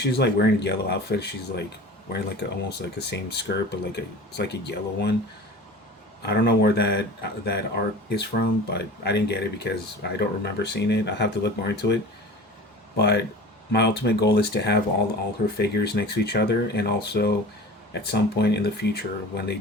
like wearing a yellow outfit. She's like wearing like almost like the same skirt, but it's like a yellow one. I don't know where that art is from, but I didn't get it because I don't remember seeing it. I have to look more into it. But my ultimate goal is to have all her figures next to each other, and also at some point in the future when they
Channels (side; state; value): both; normal; correlation 0.38